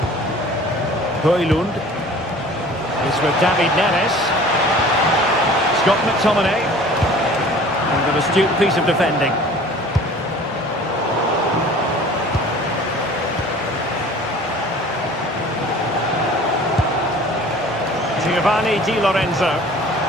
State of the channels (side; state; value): both; normal; correlation 0.46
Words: Højlund. It's with David Neres. Scott McTominay. And an astute piece of defending. Giovanni Di Lorenzo.